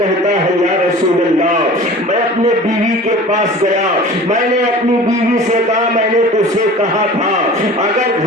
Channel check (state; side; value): normal; both; correlation 0.41